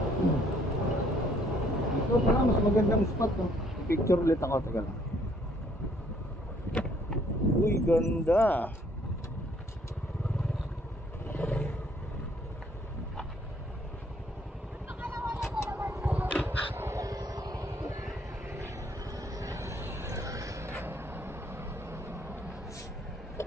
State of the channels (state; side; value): normal; both; correlation 0.64